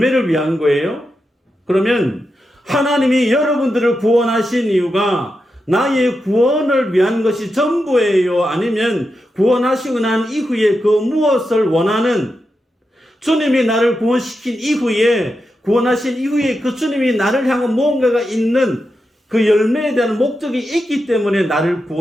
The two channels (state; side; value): normal; both; correlation 0.88